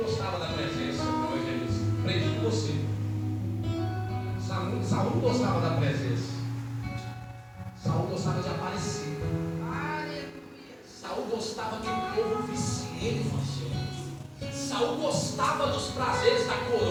gostava da presença do evangelista. Aprendi com você. Saul não gostava da presença. Saul gostava de aparecer. Saul gostava que o povo visse ele fazendo. Saul gostava dos prazeres da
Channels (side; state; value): both; identical; correlation 1.00